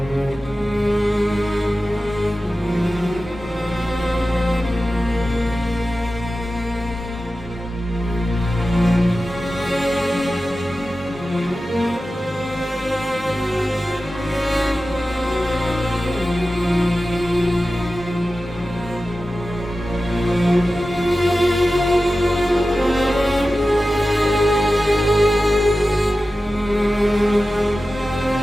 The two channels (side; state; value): both; normal; correlation 0.94